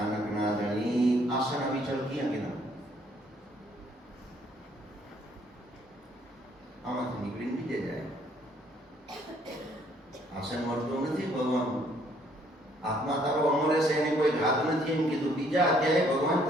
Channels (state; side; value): normal; both; correlation 0.65